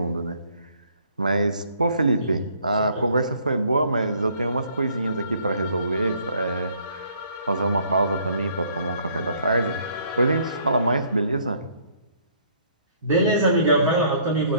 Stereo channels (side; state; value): both; inverted; correlation -0.62